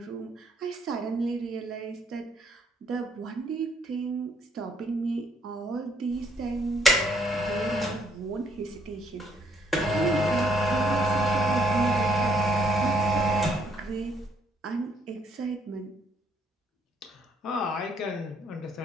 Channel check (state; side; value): normal; both; correlation 0.67